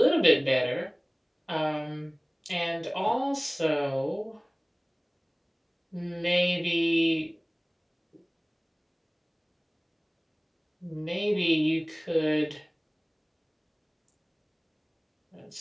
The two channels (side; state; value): both; identical; correlation 1.00